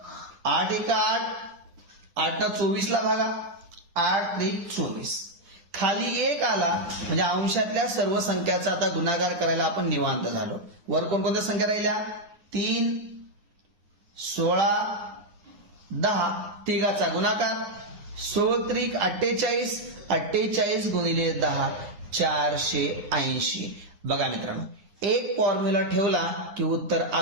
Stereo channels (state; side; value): late; left; 9.7 ms